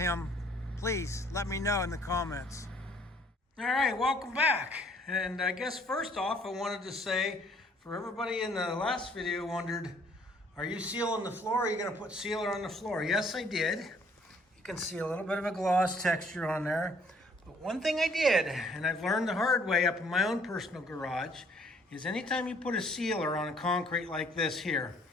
please let me know in the comments. All right, welcome back. And I guess first off, I wanted to say, for everybody in the last video wondered, are you sealing the floor? Are you gonna put sealer on the floor? Yes, I did. You can see a little bit of a gloss texture on there. But one thing I did, and I've learned the hard way up in my own personal garage, is anytime you put a sealer on a concrete like this here,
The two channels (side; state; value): both; normal; correlation 0.61